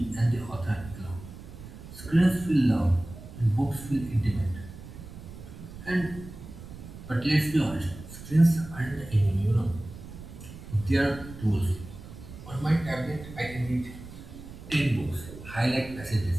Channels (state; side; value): noise; right; rumble, 14 dB below the sound